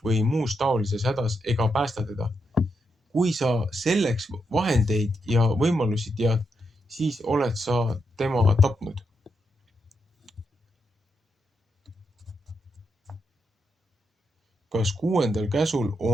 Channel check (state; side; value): normal; both; correlation 0.82